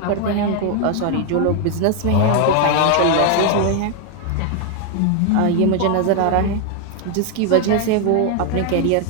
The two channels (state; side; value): different; both; correlation 0.01